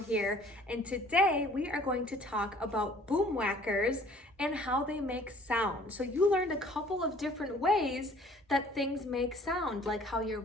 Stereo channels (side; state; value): both; normal; correlation 0.54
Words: and today we are going to talk about boomwhackers and how they make sound. So you learned a couple of different ways that things make sound, like how your